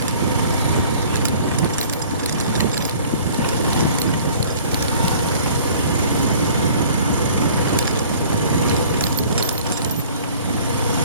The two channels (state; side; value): inverted; both; correlation -0.51